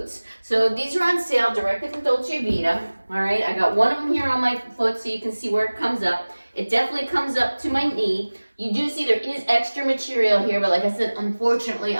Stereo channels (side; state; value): both; inverted; correlation -1.00